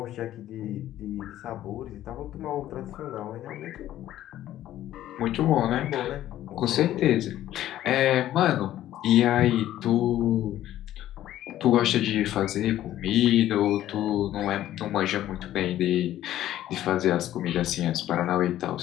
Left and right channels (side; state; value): right; quieter; 13.1 dB